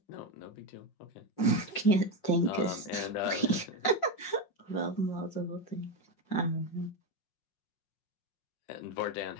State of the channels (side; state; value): right; late; 5.6 ms